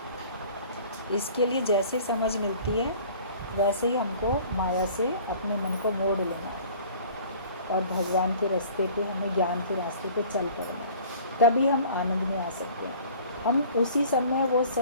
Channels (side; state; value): both; inverted; correlation -0.48